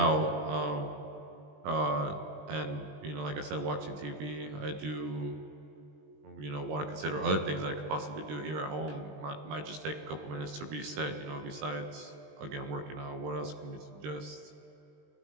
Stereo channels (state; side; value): late; left; 20 ms